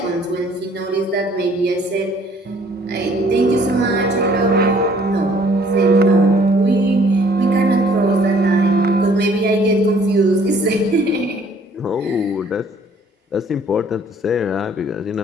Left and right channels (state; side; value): normal; both; correlation 0.58